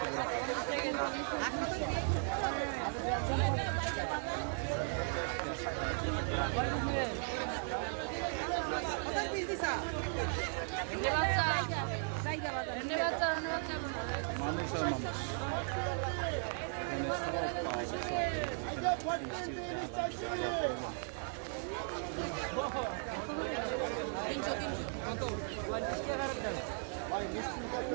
মানুষ আর মানুষ, এখানে সব পাওয়া যায়। সব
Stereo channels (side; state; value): left; silent; 53 dB below the other